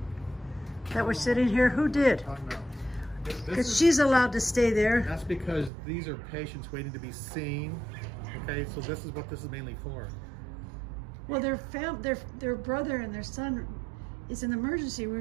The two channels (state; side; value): drops out; left; at 5.7 s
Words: that were sitting here? Who did? Because she's allowed to stay there. That's because these are patients waiting to be seen. Okay, so this is what this is mainly for. Well, their brother and their son is in the emergency